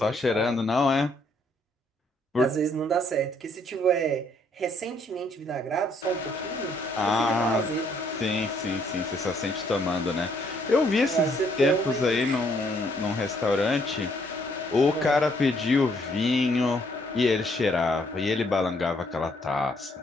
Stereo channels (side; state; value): both; normal; correlation 0.68